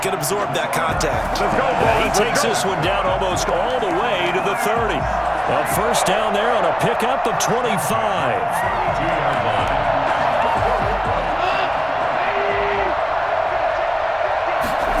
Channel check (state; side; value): identical; both; correlation 1.00